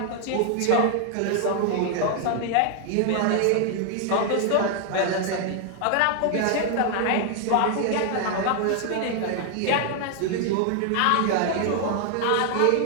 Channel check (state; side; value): different; both; correlation 0.00